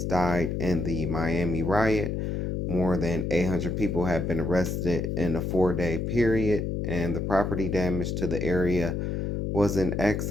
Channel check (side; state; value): left; noise; hum, 1 dB below the sound